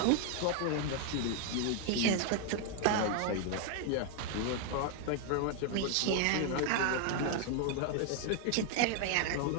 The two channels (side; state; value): both; different; correlation 0.00